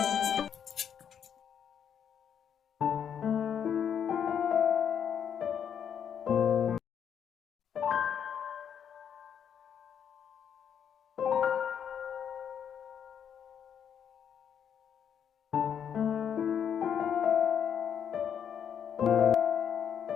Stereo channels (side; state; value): right; quieter; 8.2 dB